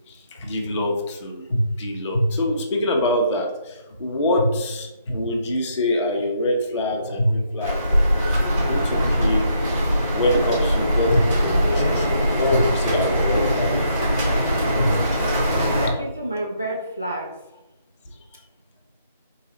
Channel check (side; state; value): both; inverted; correlation -0.72